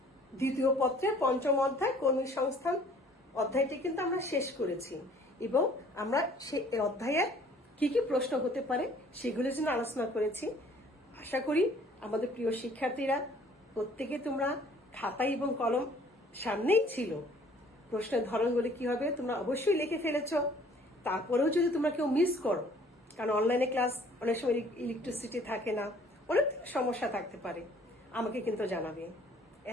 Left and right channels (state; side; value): normal; both; correlation 0.56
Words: দ্বিতীয় পত্রের পঞ্চম অধ্যায় কর্মী সংস্থান অধ্যায়টি কিন্তু আমরা শেষ করেছি, এবং আমরা সেই অধ্যায়ের কি কি প্রশ্ন হতে পারে সেগুলোর জন্য আলোচনা করেছি। আশা করি আমাদের প্রিয় শিক্ষার্থীরা প্রত্যেকে তোমরা খাতা এবং কলম সামনেই ছিল, প্রশ্নের ধরনগুলি কি হবে তোমরা অবশ্যই লিখে ফেলেছ। তারপরেও যদি তোমরা কেউ মিস করো, কারণ অনলাইনে ক্লাস অনেক সময় ইলেকট্রিসিটি থাকে না, অনেক সমস্যা থাকতে পারে, আমাকে কিন্তু জানাবে,